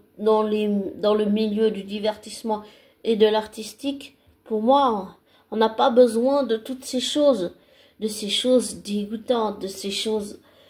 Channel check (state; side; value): identical; both; correlation 1.00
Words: le milieu du divertissement et de l'artistique. Pour moi, on n'a pas besoin de toutes ces choses, de ces choses dégoûtantes, de ces choses